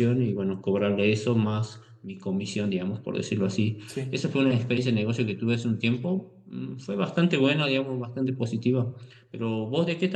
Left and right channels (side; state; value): both; identical; correlation 1.00